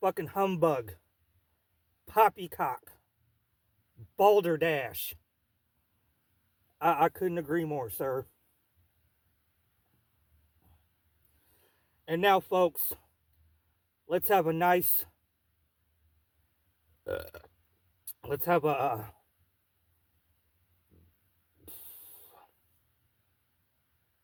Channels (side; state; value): both; identical; correlation 1.00